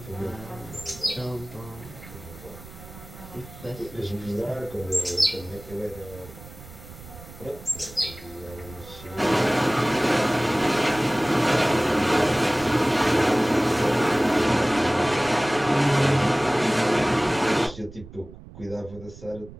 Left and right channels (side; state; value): right; noise; rumble, 17 dB below the sound